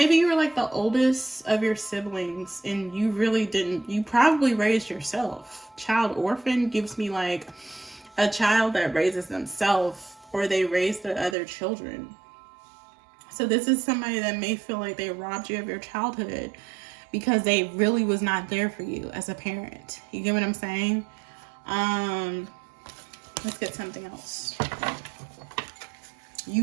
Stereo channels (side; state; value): left; drops out; at 11.4 s